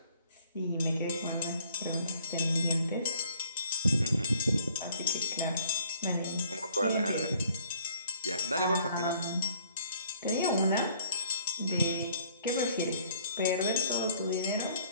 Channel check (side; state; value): both; inverted; correlation -0.59